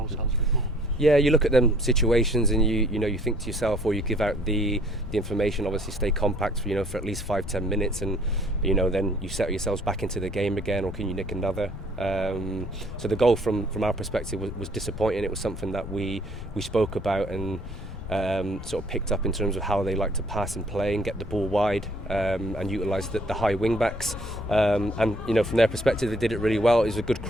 a bit more. Yeah, you look at them situations and you think to yourself, or you give out the information, obviously stay compact for at least 5-10 minutes, and then you settle yourselves back into the game again, or can you nick another? So the goal from our perspective was disappointing. It was something that we spoke about and sort of picked up in terms of how they like to pass and play and get the ball wide, and utilise the high wing backs, and from their perspective they did it really well. It was a good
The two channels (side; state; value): left; noise; rumble, 11 dB below the sound